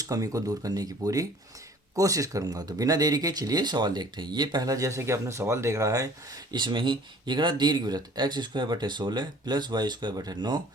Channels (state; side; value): normal; both; correlation 0.51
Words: कमी को दूर करने की पूरी कोशिश करूंगा। तो बिना देरी के चलिए सवाल देखते हैं। ये पहला, जैसे कि आपने सवाल देख रहा है, इसमें ही ये कह रहा दीर्घवृत्त एक्स स्क्वायर बटे 16 प्लस वाई स्क्वायर बटे 9